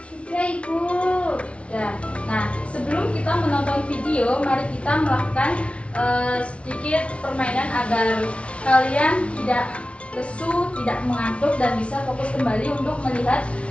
Sudah Ibu. Ya. Nah, sebelum kita menonton video, mari kita melakukan sedikit permainan agar kalian tidak lesu, tidak mengantuk, dan bisa fokus kembali untuk melihat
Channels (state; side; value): late; right; 0.061 ms